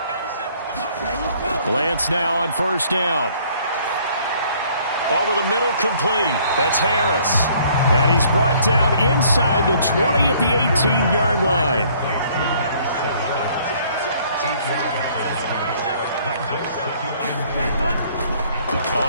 Lance now on 1st down. Over the middle, complete. That's Harris. And he's brought down inside the 20 at the 18-yard line.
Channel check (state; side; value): inverted; both; correlation -0.60